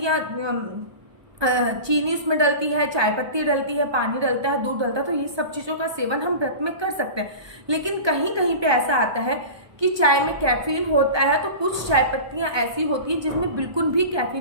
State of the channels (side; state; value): left; late; 1.2 ms